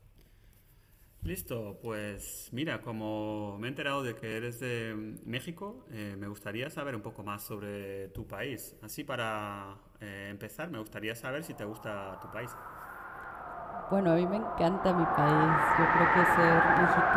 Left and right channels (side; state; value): both; identical; correlation 1.00